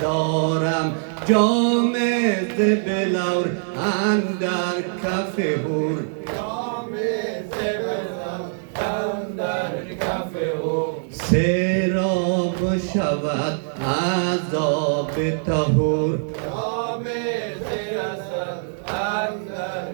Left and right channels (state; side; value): silent; left; digital silence